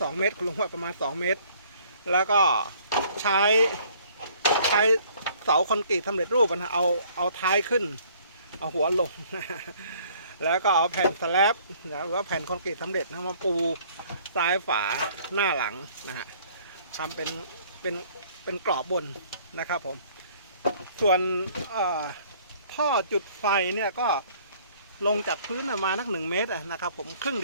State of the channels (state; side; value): inverted; both; correlation -0.58